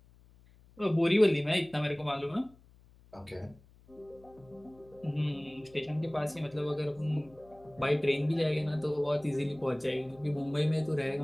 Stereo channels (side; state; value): left; noise; hum, 26 dB below the sound